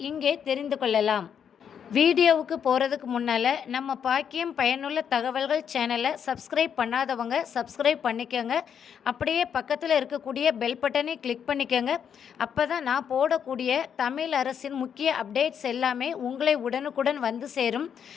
இங்கே தெரிந்து கொள்ளலாம். வீடியோவுக்கு போகிறதுக்கு முன்னால் நம்ம பாக்கியம் பயனுள்ள தகவல்கள் சேனலை சப்ஸ்கிரைப் பண்ணாதவங்க சப்ஸ்கிரைப் பண்ணிக்கோங்க. அப்படியே பக்கத்தில் இருக்கக்கூடிய பெல் பட்டனை கிளிக் பண்ணிக்கோங்க. அப்போ தான் நான் போடக்கூடிய தமிழ் அரசின் முக்கிய அப்டேட்ஸ் எல்லாமே உங்களை உடனுக்குடன் வந்து சேரும்.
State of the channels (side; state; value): right; quieter; 7.9 dB